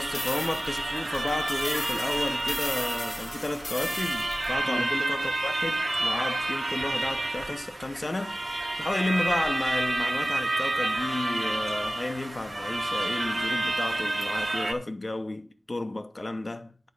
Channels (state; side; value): normal; both; correlation 0.97